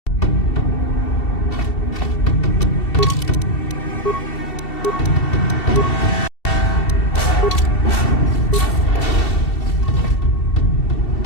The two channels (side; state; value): right; late; 2.7 ms